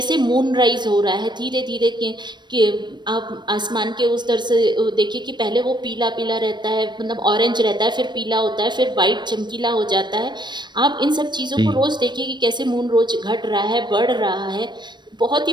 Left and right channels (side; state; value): left; late; 0.22 ms